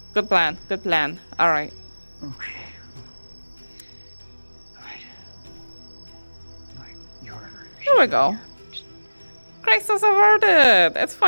Good plan. Good plan. All right. Okay. All right. You're Here we go. crisis averted. It's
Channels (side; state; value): both; inverted; correlation -1.00